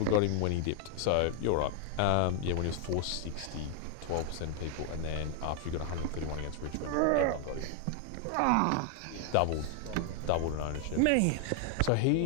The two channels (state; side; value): different; both; correlation 0.00